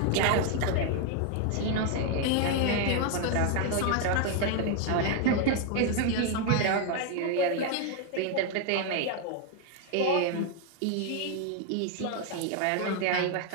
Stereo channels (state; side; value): different; both; correlation 0.00